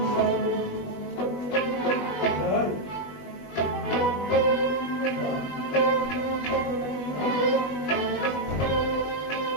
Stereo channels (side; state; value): right; late; 20 ms